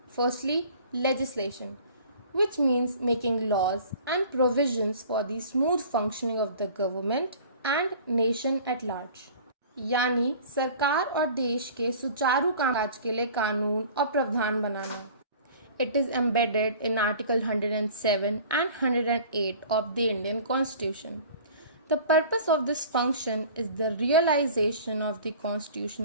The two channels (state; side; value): inverted; both; correlation -0.45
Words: Firstly, legislation, which means making laws and provisions for the smooth functioning of the government and nation at large. यानी सरकार और देश के सुचारू कामकाज के लिए कानून और प्रावधान बनाना. It is embedded in Article 107 and 108 of the Indian Constitution. The purpose of this function is the realization of the